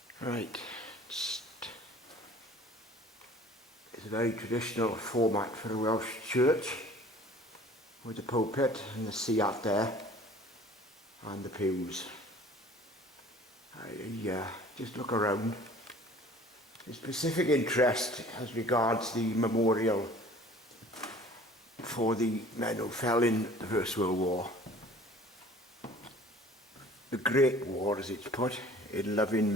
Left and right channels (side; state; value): both; normal; correlation 0.49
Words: Right, it's a very traditional format for a Welsh church, with the pulpit and the sea out there and the pews. I just look around. There's specific interest as regards the memorial for the men who fell in the First World War. The Great War, as it's put, in loving